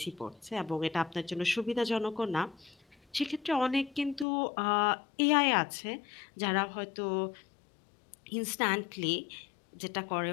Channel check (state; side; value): drops out; right; at 4.2 s